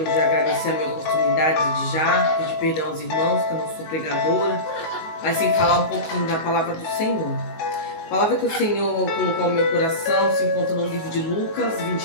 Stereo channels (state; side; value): late; right; 19 ms